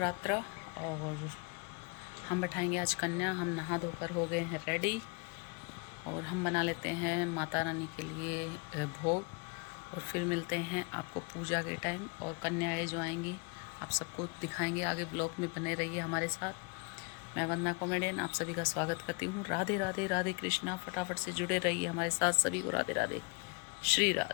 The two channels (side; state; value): right; quieter; 33.1 dB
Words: और हम बैठाएंगे आज कन्या। हम नहा धोकर हो गए हैं रेडी और हम बना लेते हैं माता रानी के लिए भोग और फिर मिलते हैं आपको पूजा के टाइम। और कन्याएँ जो आएंगी आप सबको दिखाएंगे। आगे ब्लॉग में बने रहिए हमारे साथ। मैं वंदना कॉमेडियन आप सभी का स्वागत करती हूँ। राधे राधे राधे कृष्णा। फटाफट से जुड़े रहिए हमारे साथ। सभी को राधे राधे, श्री